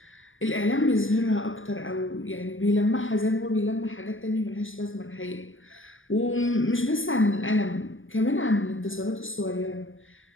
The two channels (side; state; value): right; late; 0.58 ms